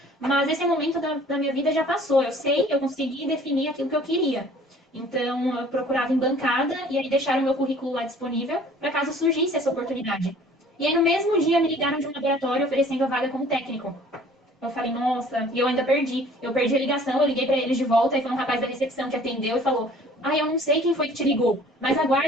mas esse momento da minha vida já passou. Eu sei, eu consegui definir aquilo que eu queria. Então, eu procurava em bancada e aí deixaram o meu currículo lá disponível para caso surgisse essa oportunidade. E aí, no mesmo dia, me ligaram de um laboratório oferecendo a vaga como técnico. Eu falei, nossa, e eu ainda perdi. Eu perdi a ligação, eu liguei para eles de volta e foi um rapaz da recepção que atendeu e falou: ah, eu não sei quem foi que te ligou, mas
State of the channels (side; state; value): both; normal; correlation 0.52